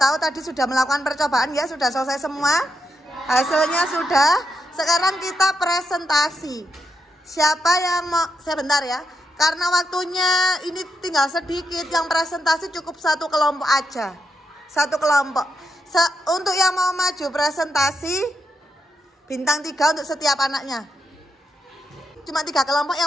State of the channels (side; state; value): both; normal; correlation 0.83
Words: tadi sudah melakukan percobaan ya, sudah selesai semua. Hasilnya sudah. Sekarang kita presentasi. Siapa yang mau, sebentar ya, karena waktunya ini tinggal sedikit, yang presentasi cukup satu kelompok aja. Satu kelompok. Untuk yang mau maju presentasi, Bintang 3 untuk setiap anaknya. Cuma 3 kelompok yang